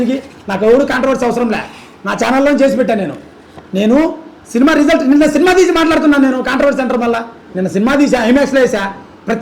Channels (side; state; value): both; identical; correlation 1.00